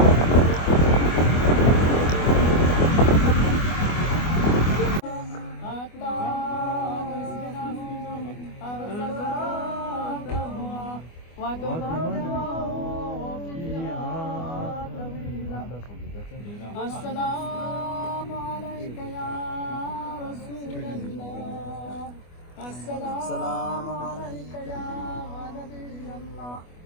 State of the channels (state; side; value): late; right; 24 ms